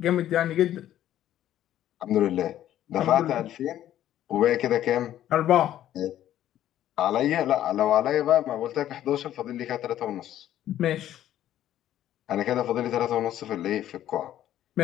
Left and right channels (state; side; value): quieter; right; 12.1 dB